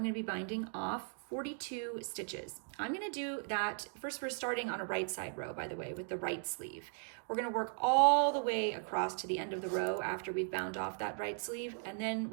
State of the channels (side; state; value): left; silent; 53 dB below the other